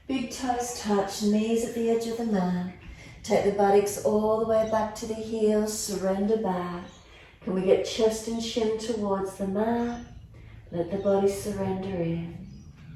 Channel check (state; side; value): identical; both; correlation 1.00